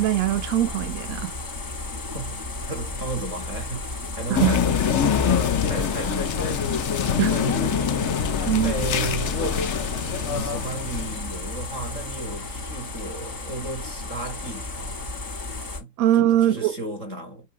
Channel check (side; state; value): left; late; 3.3 ms